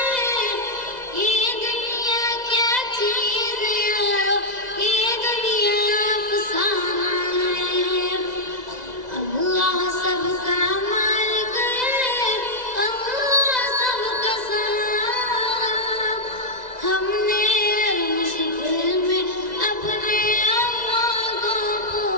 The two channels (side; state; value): left; late; 2.0 ms